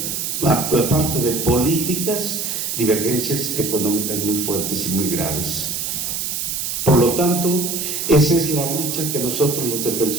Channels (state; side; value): noise; right; hiss, 2 dB below the sound